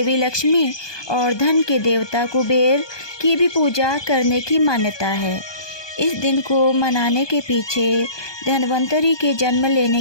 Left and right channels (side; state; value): right; late; 1.2 ms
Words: लक्ष्मी और धन के देवता कुबेर की भी पूजा करने की मान्यता है। इस दिन को मनाने के पीछे धन्वंतरि के जन्म